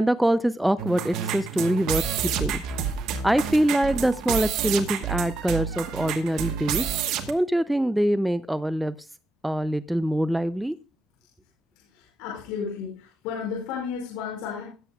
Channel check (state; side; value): normal; both; correlation 0.84